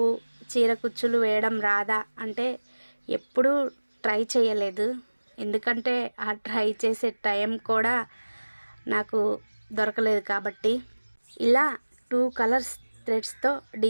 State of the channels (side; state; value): both; inverted; correlation -1.00